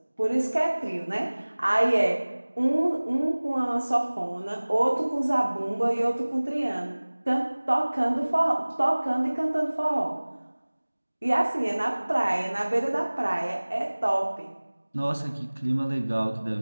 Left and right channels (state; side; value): inverted; both; correlation -1.00